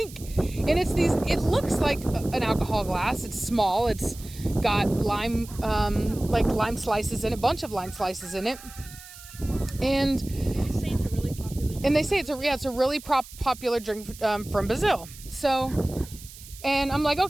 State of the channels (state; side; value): noise; right; hiss, 17 dB below the sound